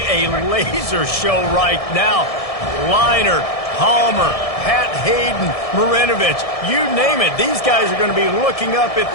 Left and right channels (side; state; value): right; late; 1.7 ms